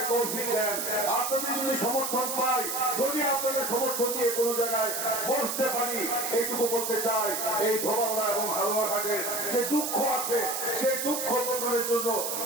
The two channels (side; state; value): right; noise; hiss, 2 dB below the sound